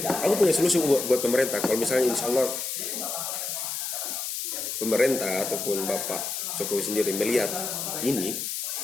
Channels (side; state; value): left; noise; hiss, 4 dB below the sound